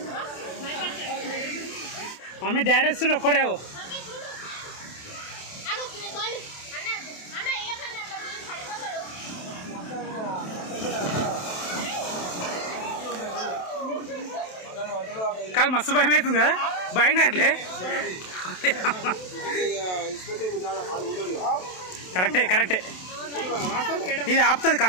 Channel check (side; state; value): right; late; 27 ms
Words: మమ్మీ డాడీ వస్తుండే ఒక్కడే కాదు మస్తు భయం అవుతుంది కదా భయం కావట్లే కరెక్టే కరెక్టే ఇది ఆపుతుంది